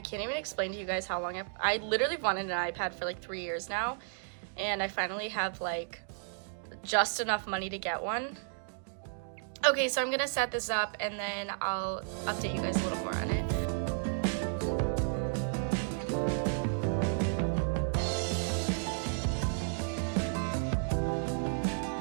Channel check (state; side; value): silent; left; digital silence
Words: can't even explain to you guys how long I literally wanted an iPad for like 3 years now, and I finally have like just enough money to get one. Okay, so I'm gonna set this up and then I'll update you guys a little more on it.